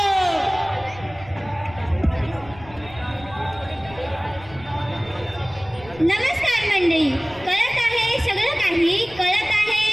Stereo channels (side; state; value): left; noise; rumble, 20 dB below the sound